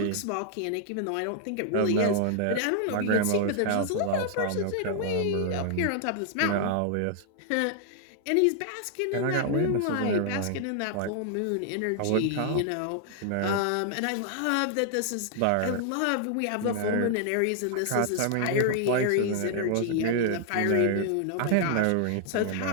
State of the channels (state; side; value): different; both; correlation -0.01